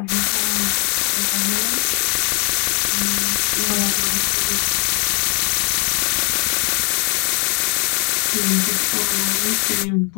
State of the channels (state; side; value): quieter; right; 35.5 dB